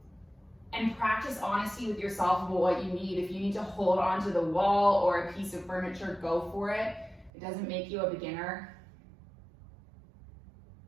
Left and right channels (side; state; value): left; drops out; at 7.3 s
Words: And practice honesty with yourself about what you need. If you need to hold onto the wall or a piece of furniture, go for it. It doesn't make you a beginner.